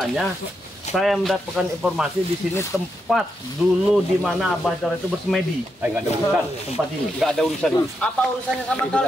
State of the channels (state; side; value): normal; both; correlation 0.83